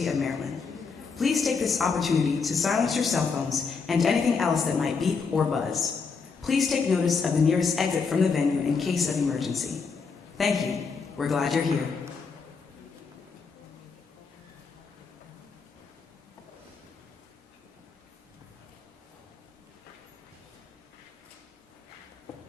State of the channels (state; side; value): quieter; right; 5.2 dB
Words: of Maryland. Please take this opportunity to silence your cell phones and anything else that might beep or buzz. Please take notice of the nearest exit from the venue in case of emergency. Thank you. We're glad you're here.